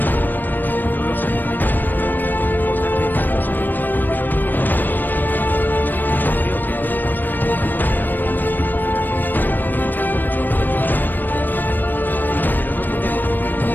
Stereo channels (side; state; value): right; late; 0.091 ms